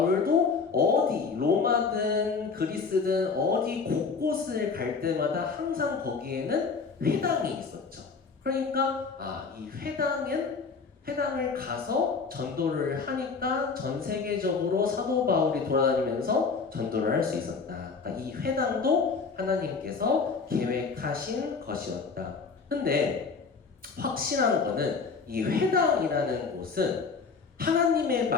어디 로마든 그리스든 어디 곳곳을 갈 때마다 항상 거기에는 회당이 있었죠. 그러니까 이 회당을 가서 전도를 하니까 전 세계적으로 사도 바울이 돌아다니면서 전도를 할 수 있었다. 그러니까 이 회당도 하나님께서 계획하신 것이었다. 근데 확실한 거는 이 회당이라는 곳은 하나님의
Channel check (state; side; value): quieter; right; 5.0 dB